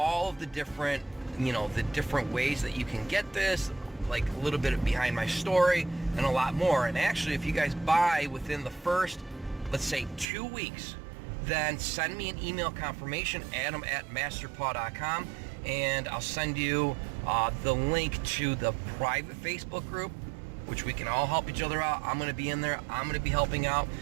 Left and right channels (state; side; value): drops out; left; at 10.2 s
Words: of the different, the different ways that you can get this, like a little bit behind my story and a lot more. And actually, if you guys buy within the first, let's say 2 weeks, then send me an email confirmation, adam@masterpaw.com, and I'll send you the link to the private Facebook group, which we can all help each other out. I'm gonna be in there. I'm gonna be helping out,